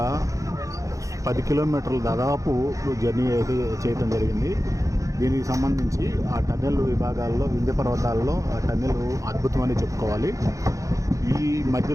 కిలోమీటర్లు దాదాపు జర్నీ అయితే చేయటం జరిగింది. దీనికి సంబంధించి ఆ టన్నెల్ విభాగాల్లో, వింధ్య పర్వతాల్లో ఆ టన్నెల్ అద్భుతమని చెప్పుకోవాలి. ఈ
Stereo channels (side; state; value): left; late; 0.16 ms